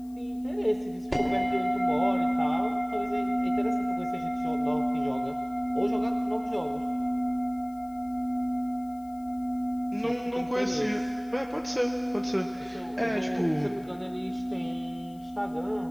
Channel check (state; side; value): noise; left; hiss, 29 dB below the sound